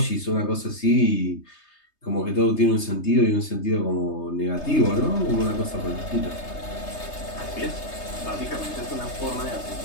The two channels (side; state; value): right; late; 3.3 ms